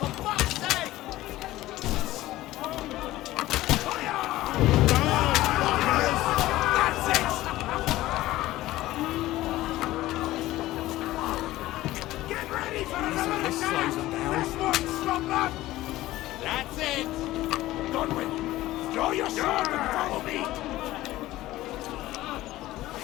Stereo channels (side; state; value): right; quieter; 16.4 dB